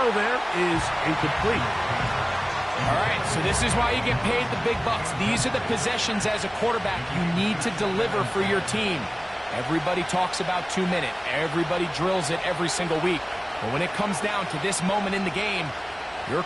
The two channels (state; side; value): identical; both; correlation 1.00